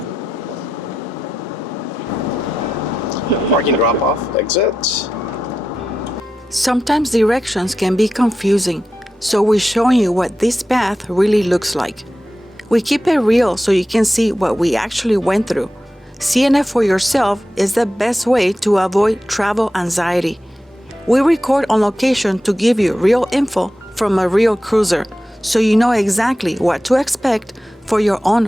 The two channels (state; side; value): normal; both; correlation 0.90